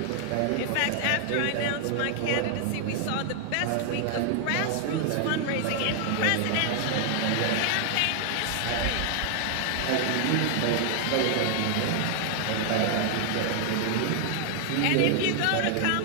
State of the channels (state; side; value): different; both; correlation 0.00